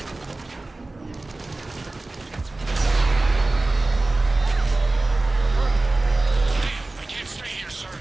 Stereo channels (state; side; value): quieter; left; 3.0 dB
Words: I can't stay here, sir.